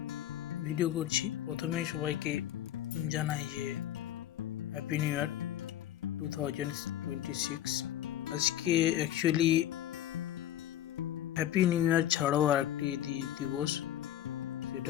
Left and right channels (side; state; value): right; quieter; 12.1 dB